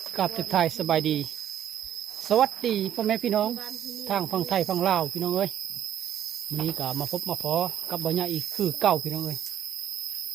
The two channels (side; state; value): left; quieter; 10.6 dB